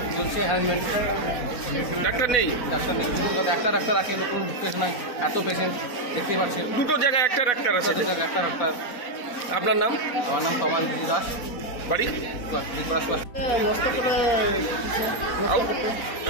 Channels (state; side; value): late; right; 4.1 ms